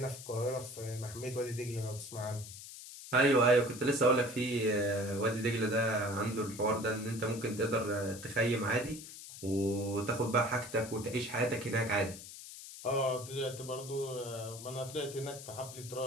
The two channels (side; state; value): left; noise; hiss, 13 dB below the sound